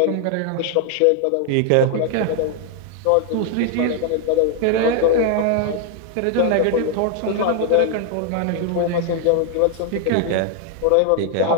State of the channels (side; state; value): both; different; correlation 0.00